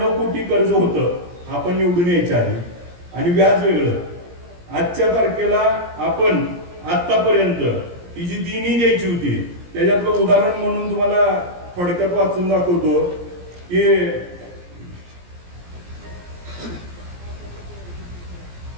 कोटी कर्ज होतं आपण निवडून यायच्या आधी आणि व्याज वेगळं. आजच्या तारखेला आपण आतापर्यंत ही जी देणी द्यायची होती त्याच्यातलं उदाहरण म्हणून तुम्हाला थोडक्यात वाचून दाखवतो की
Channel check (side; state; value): left; late; 17 ms